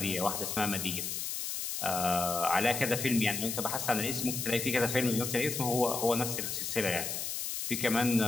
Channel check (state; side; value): noise; left; hiss, 3 dB below the sound